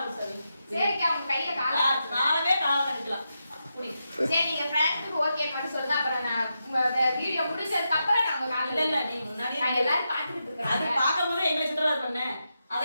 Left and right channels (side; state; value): both; inverted; correlation -0.86